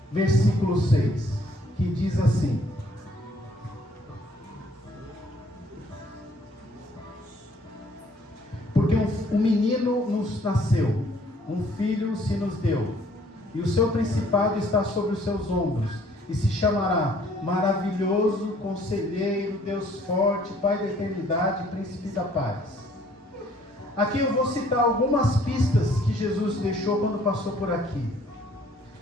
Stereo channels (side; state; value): both; normal; correlation 0.60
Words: versículo 6, que diz assim: porque um menino nos nasceu, um filho se nos deu, e o seu principado está sobre os seus ombros, e se chamará Maravilhoso, Conselheiro, Deus Forte, Pai da Eternidade, Príncipe da Paz. Aqui eu vou citar algumas pistas que Jesus deixou quando passou por aqui.